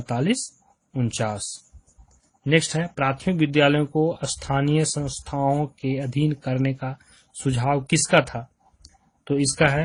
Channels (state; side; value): identical; both; correlation 1.00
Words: 49। नेक्स्ट है, प्राथमिक विद्यालयों को स्थानीय संस्थाओं के अधीन करने का सुझाव किसका था? तो इसका